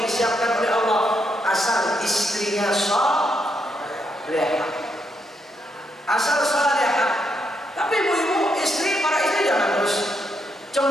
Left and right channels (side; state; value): both; normal; correlation 0.79